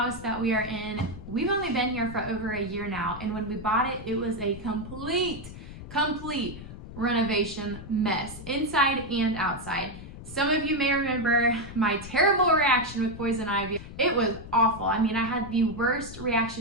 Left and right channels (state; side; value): noise; left; rumble, 13 dB below the sound